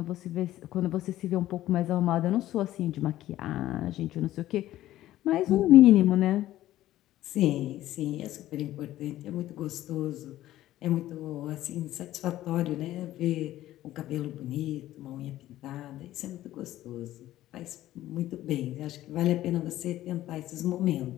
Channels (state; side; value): quieter; right; 14.3 dB